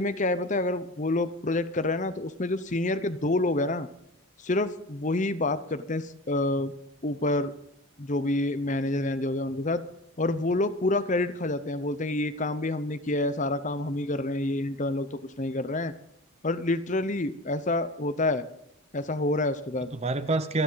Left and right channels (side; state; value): both; normal; correlation 0.35